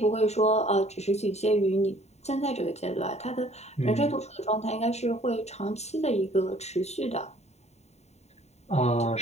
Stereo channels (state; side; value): late; right; 0.32 ms